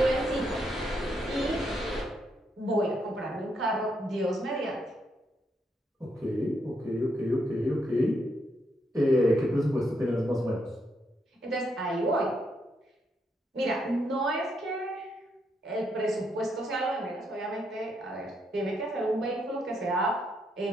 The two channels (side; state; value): both; normal; correlation 0.78